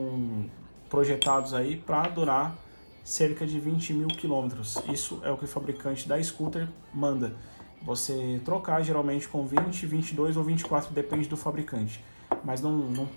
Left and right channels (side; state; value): both; inverted; correlation -1.00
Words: projetados aí para durar cerca de 20.000 quilômetros. Isso é o que o fabricante da scooter manda. Você trocar geralmente com 20, 22 ou 24, depende do fabricante. Mas